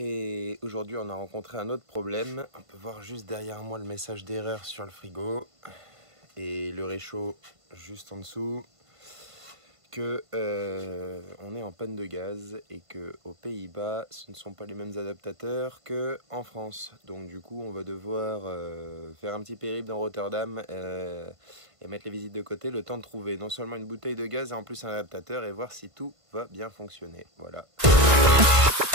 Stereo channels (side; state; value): left; late; 1.5 ms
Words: aujourd'hui on a rencontré un autre problème. On peut voir juste derrière moi le message d'erreur sur le frigo et le réchaud juste en dessous que on est en panne de gaz et que aux Pays-Bas ce ne sont pas les mêmes adaptateurs que en France. Donc du coup on va devoir faire un petit périple dans Rotterdam et mettre les visites de côté, le temps de trouver non seulement une bouteille de gaz et en plus un adaptateur et voir si tout va bien fonctionner. Voilà.